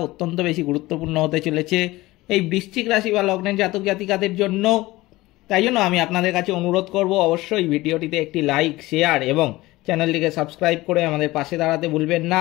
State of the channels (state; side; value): quieter; right; 19.0 dB